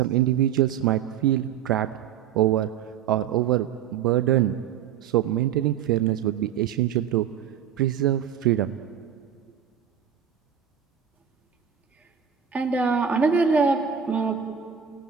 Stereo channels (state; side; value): quieter; left; 8.6 dB